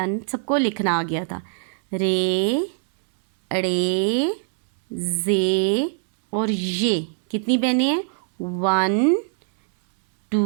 सबको लिखना आ गया था। रे अड़े जे और ये कितनी बहनें हैं? 1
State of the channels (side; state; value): left; silent; 64 dB below the other